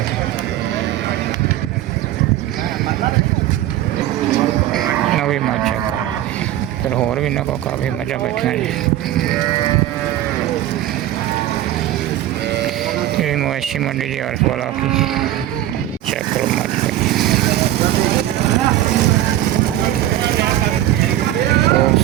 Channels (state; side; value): quieter; left; 13.5 dB